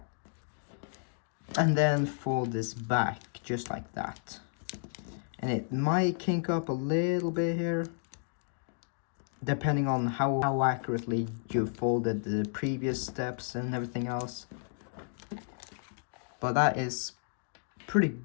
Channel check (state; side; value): silent; right; digital silence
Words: and then fold this back just like that. And it might kink up a little bit here, depending on how accurately you folded the previous steps and everything else. But that is pretty